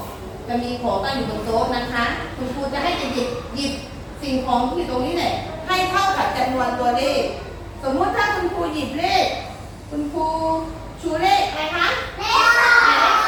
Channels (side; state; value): both; identical; correlation 1.00